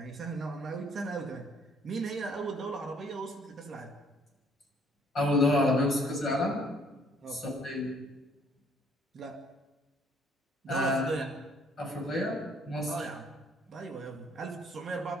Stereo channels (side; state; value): both; normal; correlation 0.63